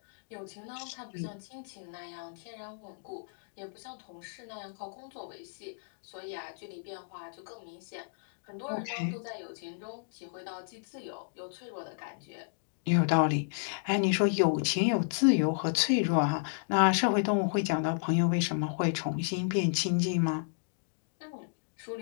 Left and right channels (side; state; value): right; silent; digital silence